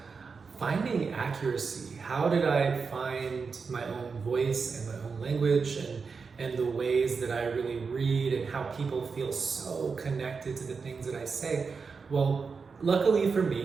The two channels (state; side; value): quieter; left; 5.1 dB